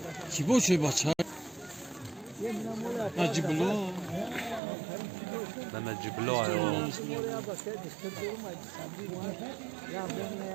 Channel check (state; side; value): drops out; left; at 4.6 s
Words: Çibo şey baça. Nacibula. Nacibula yo.